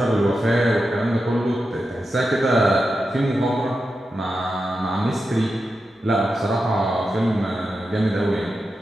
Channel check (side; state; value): both; normal; correlation 0.89